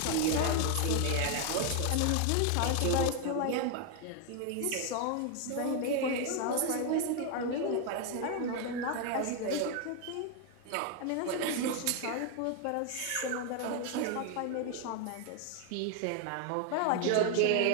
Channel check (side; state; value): both; different; correlation 0.01